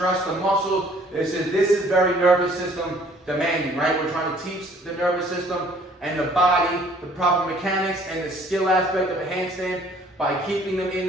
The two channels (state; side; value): normal; both; correlation 0.57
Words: stress the muscles. This is very nervous system demanding, right? We're trying to teach the nervous system and the body the proper mechanics and the skill aspect of a handstand by keeping them in